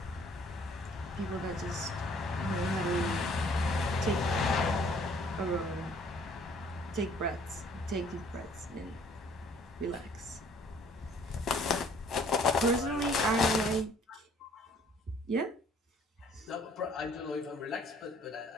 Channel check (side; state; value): both; normal; correlation 0.58